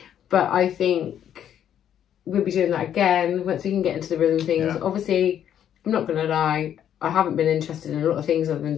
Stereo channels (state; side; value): quieter; right; 9.9 dB